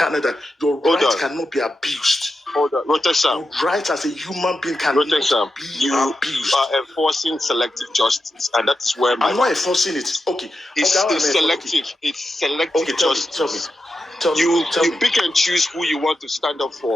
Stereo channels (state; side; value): normal; both; correlation 0.89